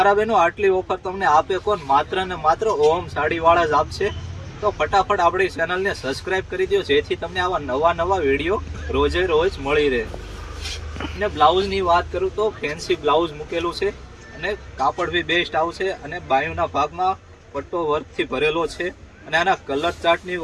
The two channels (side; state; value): both; identical; correlation 1.00